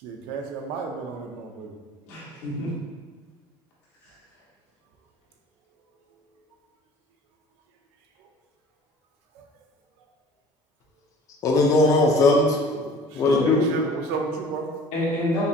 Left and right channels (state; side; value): normal; both; correlation 0.47